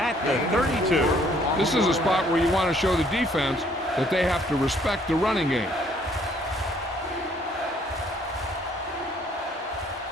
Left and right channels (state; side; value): normal; both; correlation 0.63